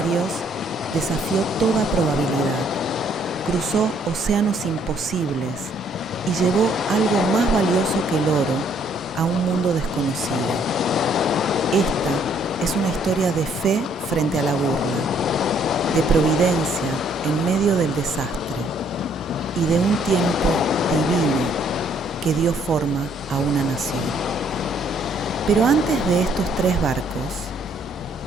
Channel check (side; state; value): both; normal; correlation 0.65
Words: desafió toda probabilidad, cruzó océanos imposibles y llevó algo más valioso que el oro a un mundo desconocido. Esta es una historia de fe frente a la burla, de providencia en medio del desastre y de un tiempo divino que dio forma a una nación. Pero antes de estos 3 barcos,